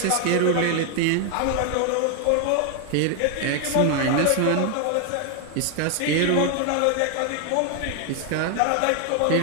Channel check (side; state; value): both; different; correlation 0.01